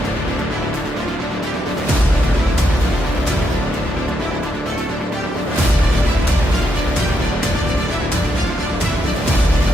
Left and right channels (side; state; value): both; normal; correlation 0.79